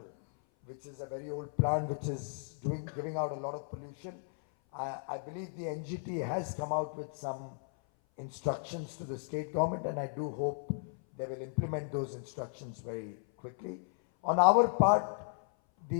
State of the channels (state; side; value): silent; right; 55 dB below the other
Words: which is a very old plant which is giving out a lot of pollution. I believe the NGT has come out with some instructions to the state government, and I do hope they will implement those instructions very quickly. On our part,